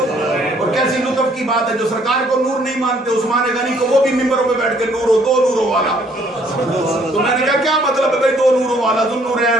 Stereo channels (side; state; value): both; normal; correlation 0.63